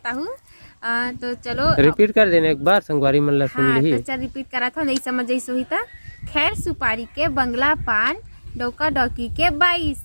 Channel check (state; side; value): inverted; both; correlation -1.00